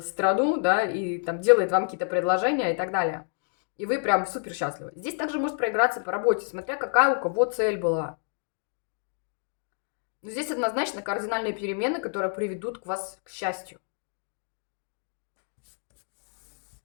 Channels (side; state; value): right; silent; digital silence